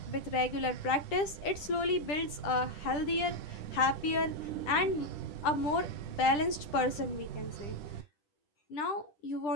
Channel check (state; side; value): late; right; 10 ms